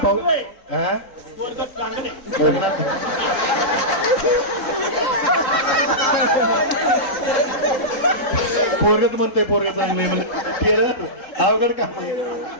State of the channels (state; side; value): late; right; 3.8 ms